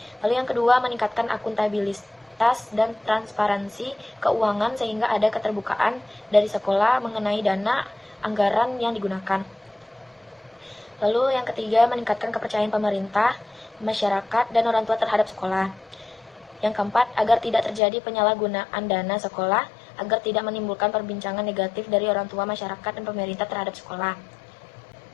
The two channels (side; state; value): right; drops out; at 17.8 s